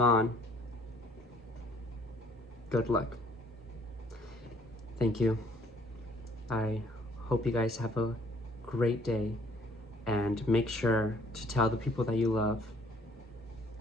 good luck. Thank you. I hope you guys have a great day, and make sure to tell the people that you love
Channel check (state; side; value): normal; both; correlation 0.61